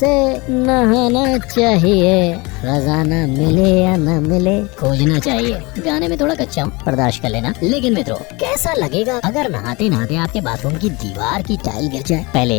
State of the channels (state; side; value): quieter; right; 25.6 dB